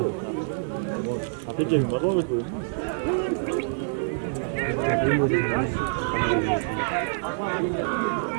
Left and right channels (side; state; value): left; silent; digital silence